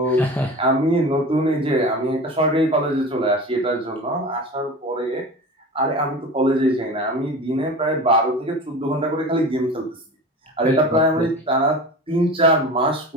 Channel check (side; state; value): both; normal; correlation 0.33